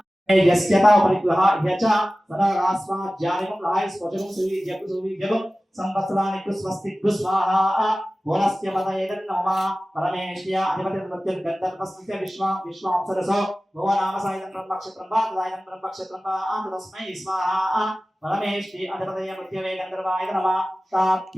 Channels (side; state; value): both; normal; correlation 0.96